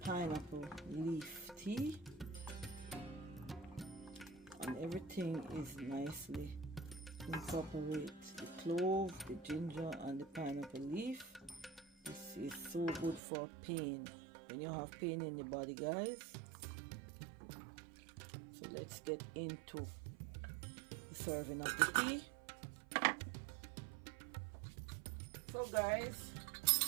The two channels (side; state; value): left; drops out; at 13.2 s